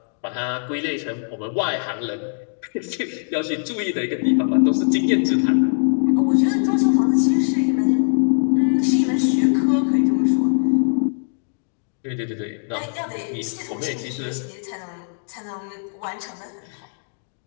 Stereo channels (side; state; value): right; silent; digital silence